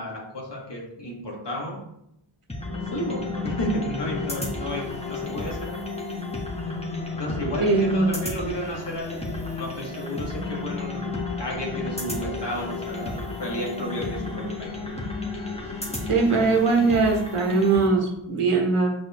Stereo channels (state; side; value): normal; both; correlation 0.33